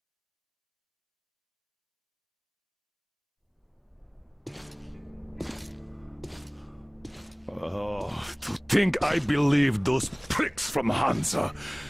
Oh, think I believed those pricks from Hansa.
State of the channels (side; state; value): both; identical; correlation 1.00